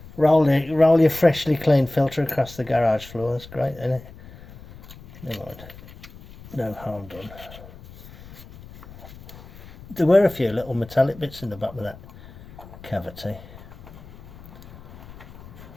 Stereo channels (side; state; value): left; noise; rumble, 18 dB below the sound